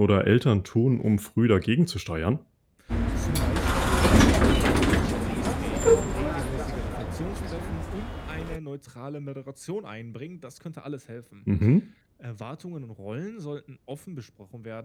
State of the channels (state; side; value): identical; both; correlation 1.00